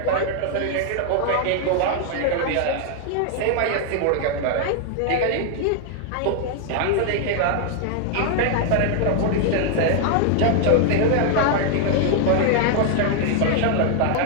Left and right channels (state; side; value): different; both; correlation 0.00